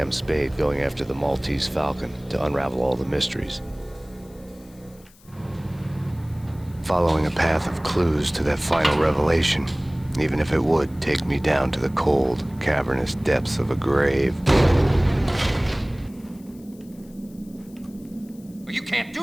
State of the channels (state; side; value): noise; left; hiss, 27 dB below the sound